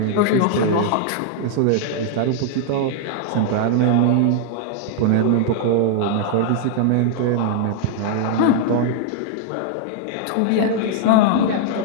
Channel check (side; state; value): both; different; correlation 0.00